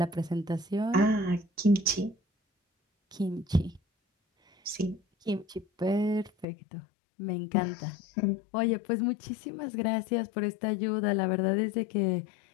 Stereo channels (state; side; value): drops out; right; at 6.5 s